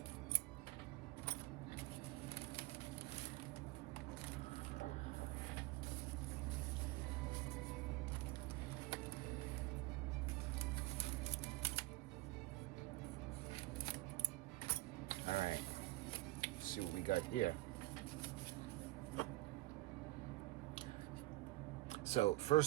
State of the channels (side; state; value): left; quieter; 19.6 dB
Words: All right, let's see what we got here. So